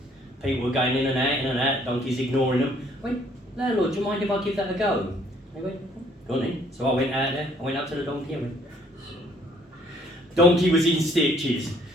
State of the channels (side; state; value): both; normal; correlation 0.62